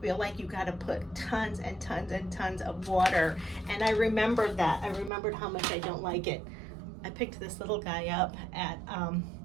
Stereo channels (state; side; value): drops out; left; at 5.1 s